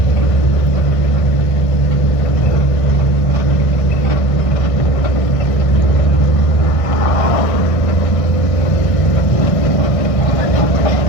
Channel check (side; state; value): right; late; 1.6 ms